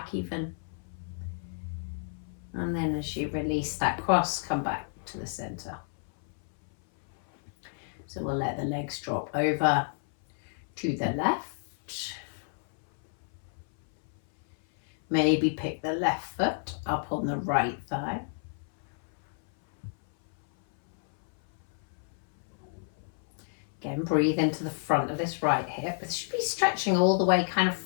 even. And then as you release that cross, come back to the center. So we'll let the legs drop over to the left. Maybe pick the left foot up on the right thigh. Again, breathe into the front of this right hip. It should be stretching all the way kind of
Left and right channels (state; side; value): silent; right; 58 dB below the other